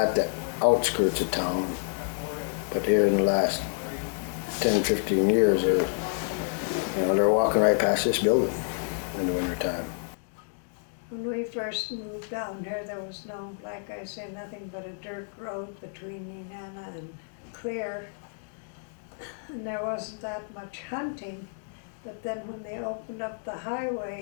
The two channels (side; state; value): right; silent; 59 dB below the other